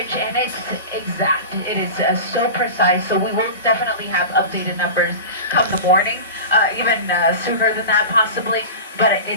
and it's exact. It is so precise, so we will definitely have updated numbers come the morning, even sooner than that possibly. But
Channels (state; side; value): inverted; both; correlation -0.30